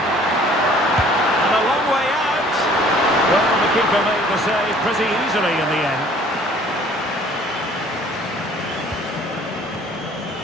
a long way out. Well, the keeper made the save pretty easily in the end.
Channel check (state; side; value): normal; both; correlation 0.54